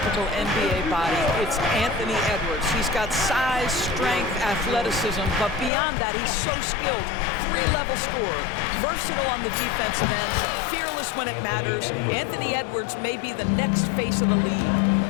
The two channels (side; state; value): right; drops out; at 5.7 s